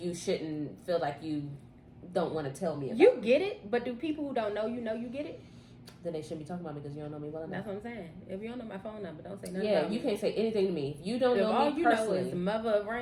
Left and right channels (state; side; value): identical; both; correlation 1.00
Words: shouldn't feel like you don't want to tell me about. You get it, but do people who don't know you get it? Then they shouldn't be talking about me because you don't know me well enough. That's what I'm saying. If you don't know my phone number, don't say nothing. Yeah, you can't say anything to me. If you don't know all me you personally, know is the mother of